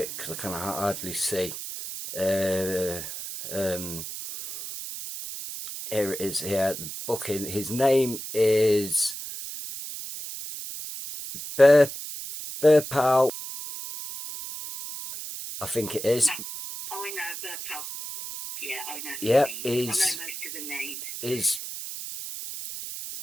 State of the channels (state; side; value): noise; right; hiss, 8 dB below the sound